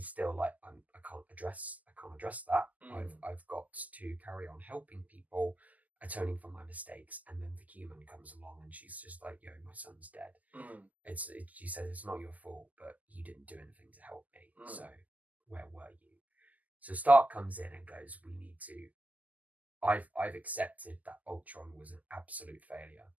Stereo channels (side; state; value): left; late; 0.078 ms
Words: still like, I can't address that. I've got to carry on helping people, atoning for my mistakes. And then the human comes along and she's just like, yo, my son's dead. She says it's not your fault, but you didn't do anything to help me. So where were you? So Stark comes in and goes, we need to. I've accepted that Ultron was an absolute failure,